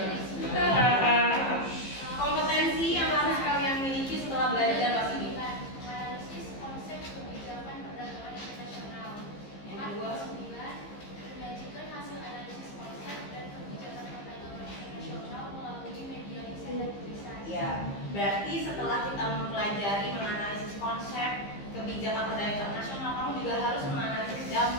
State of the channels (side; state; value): right; late; 15 ms